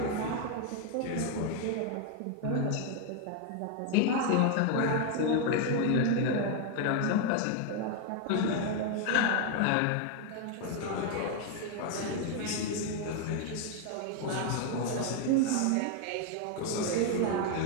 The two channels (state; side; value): different; both; correlation 0.00